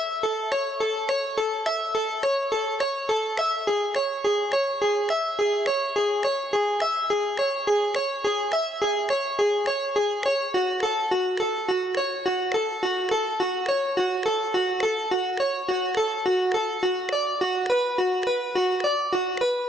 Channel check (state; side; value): normal; both; correlation 0.75